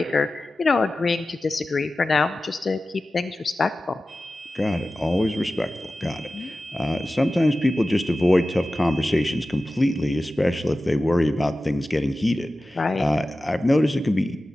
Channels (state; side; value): normal; both; correlation 0.95